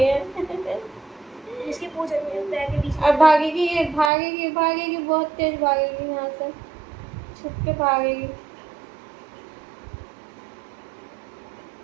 इसकी पूंछ पैर के बीच में। अब भागेगी, ये भागेगी भागेगी, बहुत तेज भागेगी, यहाँ से छुप के भागेगी।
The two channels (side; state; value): left; drops out; at 4.1 s